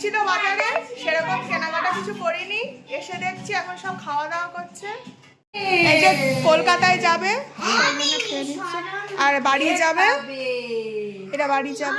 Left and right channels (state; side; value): identical; both; correlation 1.00